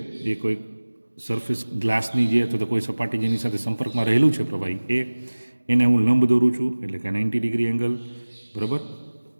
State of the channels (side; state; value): both; inverted; correlation -1.00